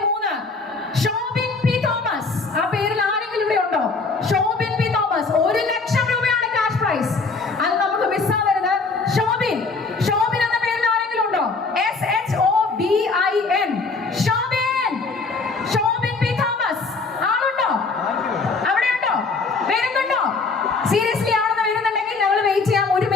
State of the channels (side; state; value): right; quieter; 4.1 dB